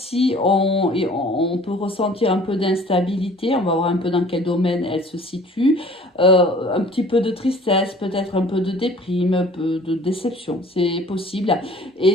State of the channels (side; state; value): both; normal; correlation 0.50